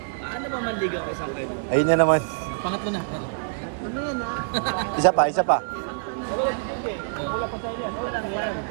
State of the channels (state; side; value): silent; left; 61 dB below the other